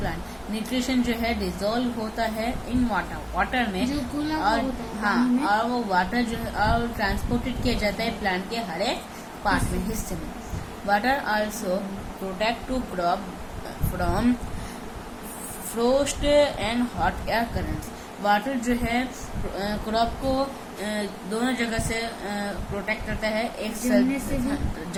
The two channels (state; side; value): identical; both; correlation 1.00